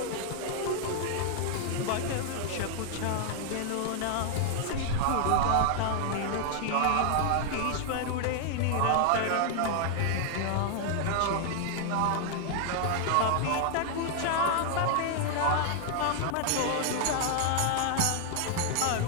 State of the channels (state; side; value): different; both; correlation 0.00